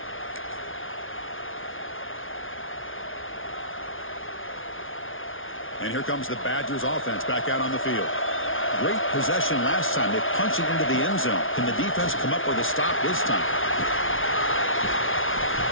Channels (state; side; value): late; right; 0.58 ms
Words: And here comes the Badgers offense back out on the field. Great possession last time. They punched it into the end zone. Can the defense come up with a stop this time?